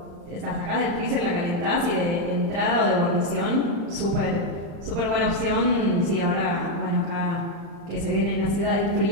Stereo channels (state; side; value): late; left; 35 ms